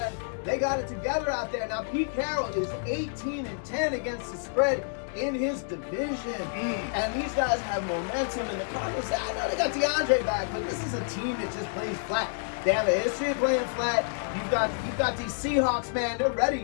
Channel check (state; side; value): silent; right; digital silence